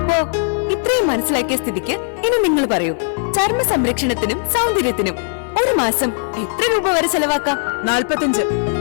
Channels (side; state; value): right; silent; 67 dB below the other